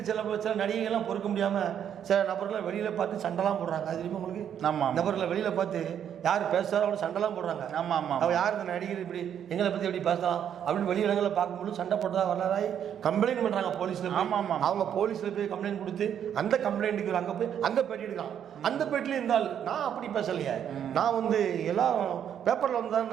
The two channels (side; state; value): left; quieter; 9.1 dB